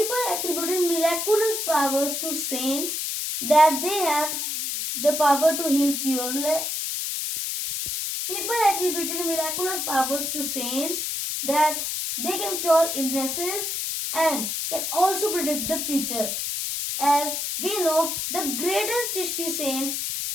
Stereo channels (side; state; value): left; noise; hiss, 2 dB below the sound